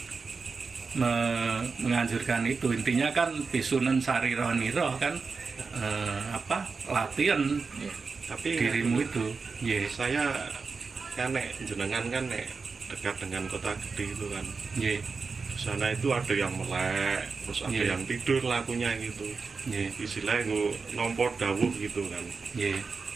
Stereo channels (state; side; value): quieter; left; 4.7 dB